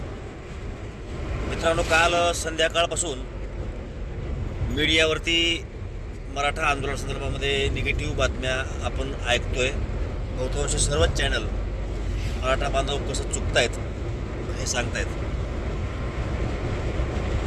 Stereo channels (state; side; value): identical; both; correlation 1.00